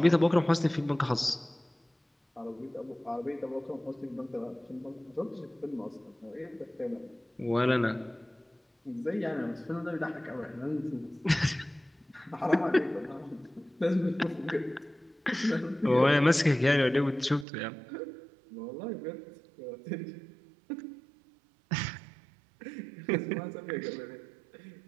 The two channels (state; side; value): drops out; left; at 17.4 s